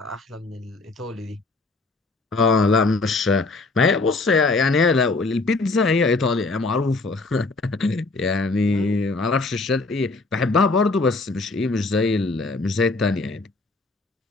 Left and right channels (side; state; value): right; quieter; 3.5 dB